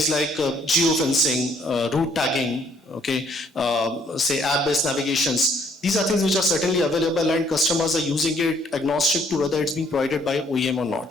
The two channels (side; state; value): both; normal; correlation 0.64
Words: like geofencing, route tagging, okay, say app-based navigations. These are things which are certainly available, and customers are using it agnostic to whether it's being provided by OEM or